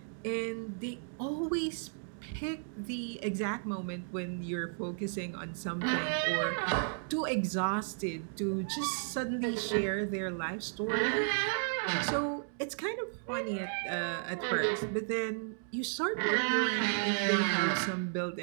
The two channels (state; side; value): silent; left; digital silence